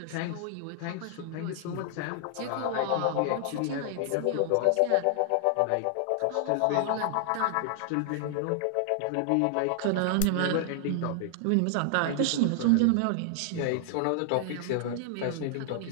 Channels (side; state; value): both; different; correlation 0.00